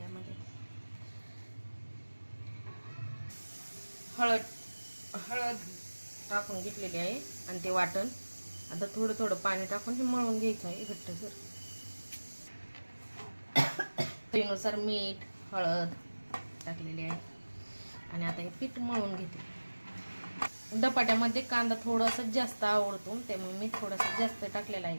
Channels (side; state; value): both; inverted; correlation -1.00